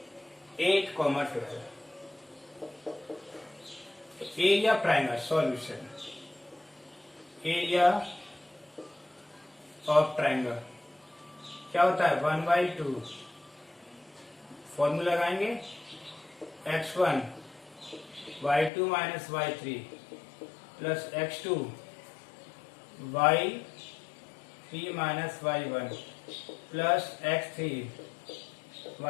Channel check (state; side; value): drops out; right; at 18.7 s